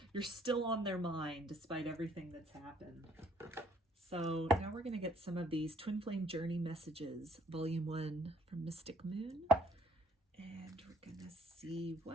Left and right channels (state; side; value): normal; both; correlation 0.62